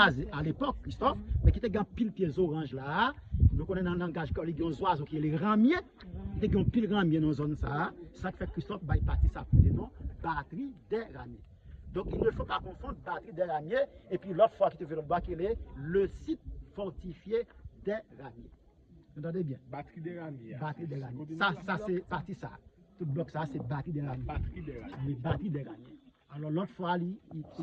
à l'époque, Christophe, mais qui était un pile pieds orange là. Nous connaissons dans le langage qu'il y a des oiseaux qui sont les ramiers. Il y a un pile ramier dans la zone ça. Ça fait Christophe va partir ça pour non batterie des ramiers. Donc, il ne faut pas confondre batterie des ramiers et puis l'autre fois qui te fait le bas, qui est le site fortifié des ramiers. Vous entendez bien? Batterie des ramiers. Batterie des ramiers. Ça c'est parti ça. Tout bloc ça, c'est batterie des ramiers. Batterie des ramiers. Les batteries des ramiers. Alors l'autre fois, il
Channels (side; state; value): both; identical; correlation 1.00